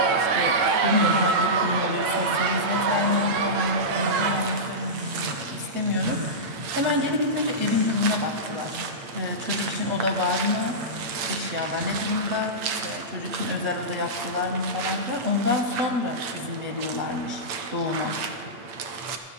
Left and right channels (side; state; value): left; late; 8.7 ms